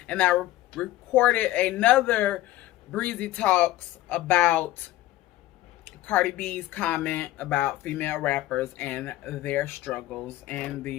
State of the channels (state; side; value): quieter; right; 15.8 dB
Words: And I recorded another Breezy Talks about Cardi B's comment about female rappers and their struggles and